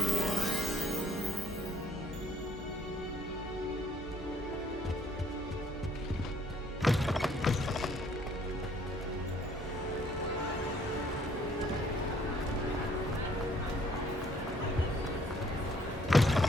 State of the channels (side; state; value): both; normal; correlation 0.62